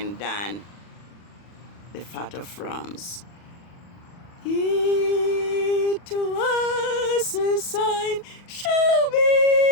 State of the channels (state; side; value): late; right; 40 ms